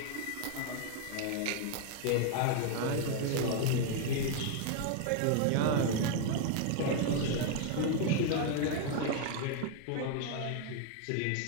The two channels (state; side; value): different; both; correlation 0.00